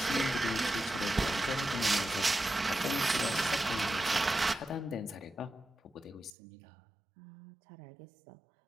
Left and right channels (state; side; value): drops out; left; at 6.3 s